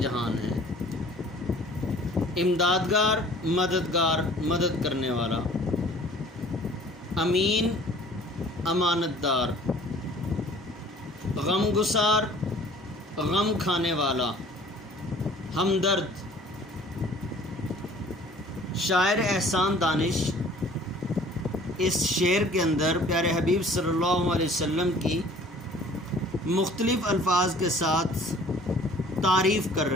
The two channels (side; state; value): both; normal; correlation 0.50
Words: ہیں۔ امدادگار مددگار، مدد کرنے والا۔ امین امانت دار۔ غم گسار غم کھانے والا۔ ہمدرد۔ شاعر احسان دانش اس شعر کے اندر پیارے حبیب صلی اللہ علیہ وسلم کی مختلف الفاظ کے ساتھ تعریف کر